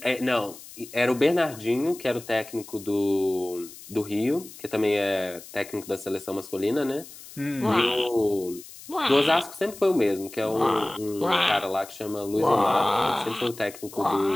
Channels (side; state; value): left; noise; hiss, 17 dB below the sound